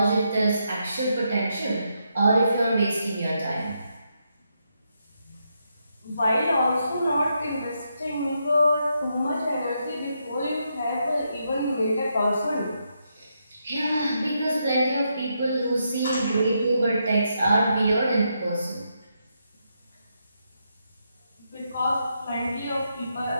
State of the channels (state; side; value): inverted; both; correlation -0.81